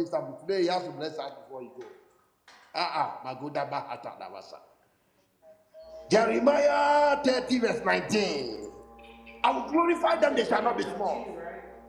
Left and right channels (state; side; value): identical; both; correlation 1.00